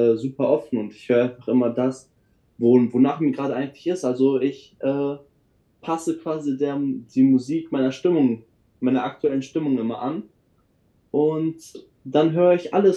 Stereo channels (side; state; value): both; identical; correlation 1.00